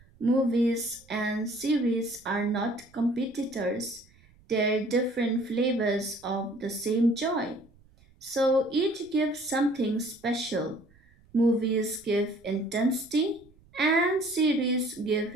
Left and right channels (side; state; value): right; noise; rumble, 29 dB below the sound